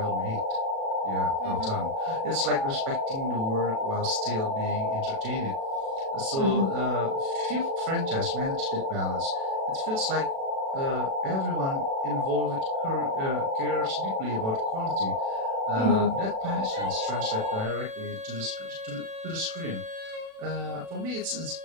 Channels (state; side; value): late; left; 36 ms